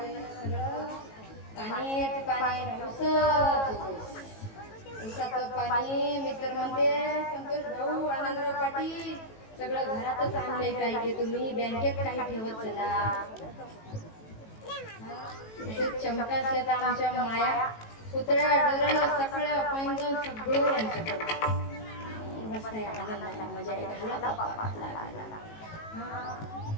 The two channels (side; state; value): right; late; 18 ms